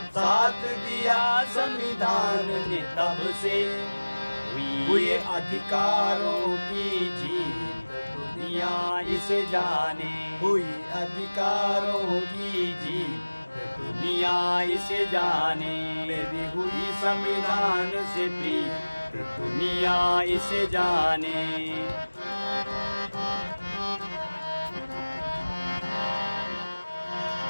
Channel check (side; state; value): both; inverted; correlation -1.00